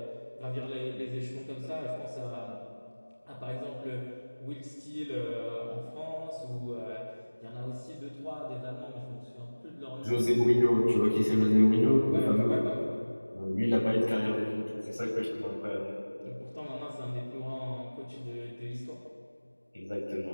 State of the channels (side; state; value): both; inverted; correlation -1.00